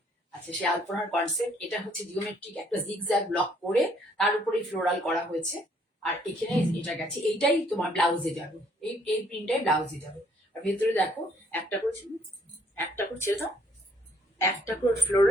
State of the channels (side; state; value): both; normal; correlation 0.64